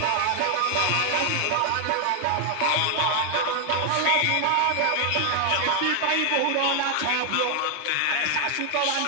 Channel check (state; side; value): different; both; correlation 0.00